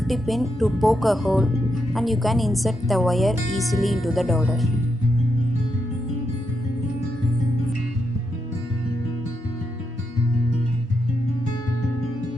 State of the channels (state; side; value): normal; both; correlation 0.83